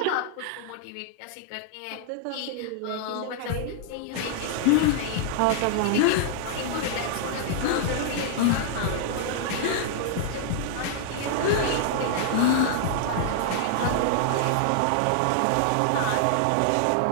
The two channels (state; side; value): different; both; correlation -0.01